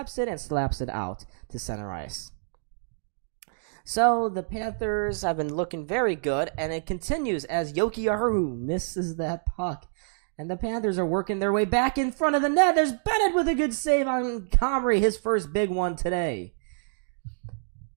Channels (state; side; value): silent; left; digital silence